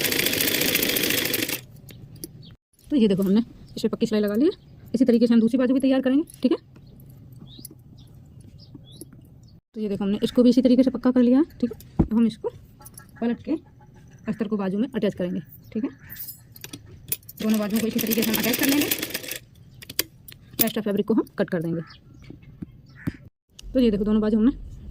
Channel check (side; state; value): both; identical; correlation 1.00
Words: तो ये देखो हमने इस पर पक्की सिलाई लगा ली है। इसी तरीके से हम दूसरी बाजू भी तैयार करेंगे। ठीक है, तो ये देखो हमने इसको भी इसी तरीके से पक्का कर लिया है। ठीक है, अब हम इसको पलट के अस्तर को बाजू में अटैच करेंगे। ठीक है, दोनों बाजुओं को इसी तरीके से हम अटैच कर लेंगे। एक्स्ट्रा फैब्रिक को हम कट कर देंगे। तो ये देखो दोनों बाजू हमने